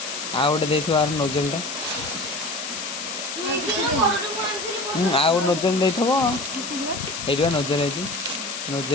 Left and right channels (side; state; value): left; noise; hiss, 6 dB below the sound